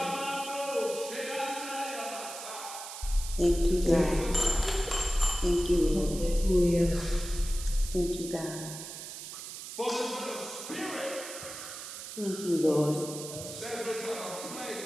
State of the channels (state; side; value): noise; right; hiss, 10 dB below the sound